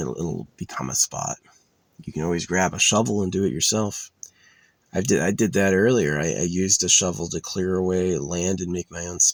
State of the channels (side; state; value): both; identical; correlation 1.00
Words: become a spot. You can always grab a shovel and do it yourself. I did that earlier. I used a shovel to clear away land and make my own